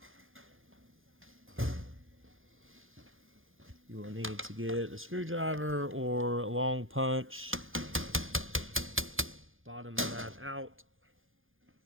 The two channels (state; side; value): late; left; 0.59 ms